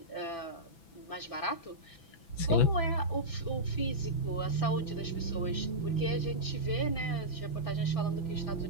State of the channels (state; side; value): late; right; 6.0 ms